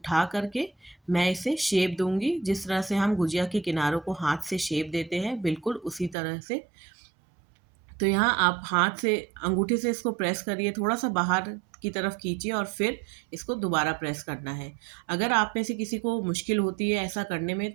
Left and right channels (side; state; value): left; drops out; at 6.2 s